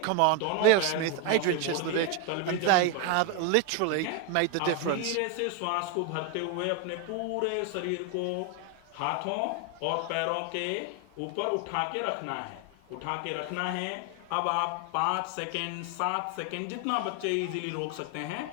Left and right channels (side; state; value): both; different; correlation 0.01